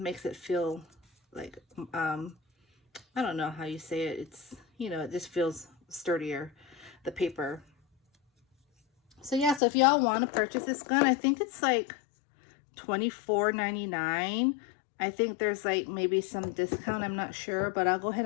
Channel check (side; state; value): right; drops out; at 9.6 s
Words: makes it feel like I don't know how you say it. It's it just feels sturdier, the paper. So yeah, so if y'all want to purchase this gun, I think it's like $24.99. I think there's like maybe some discount, I'm not sure, but I'll go ahead